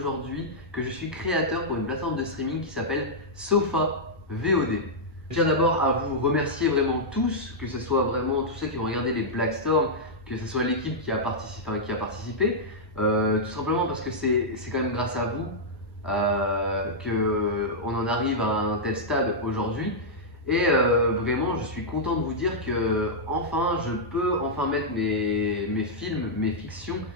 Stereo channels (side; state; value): both; normal; correlation -0.08